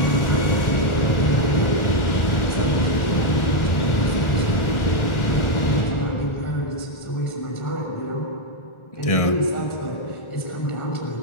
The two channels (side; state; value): right; late; 1.4 ms